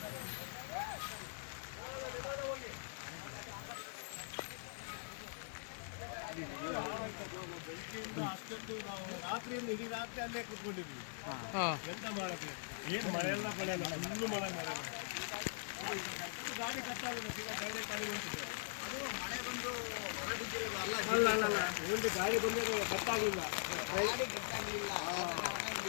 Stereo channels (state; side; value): silent; right; digital silence